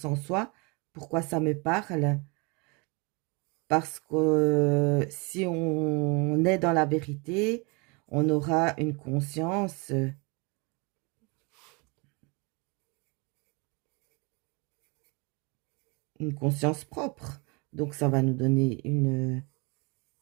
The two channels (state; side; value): quieter; left; 30.0 dB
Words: en soi? Pourquoi ça me parle? Parce que si on est dans la vérité, on aura une conscience propre. Donc, ça va nous donner une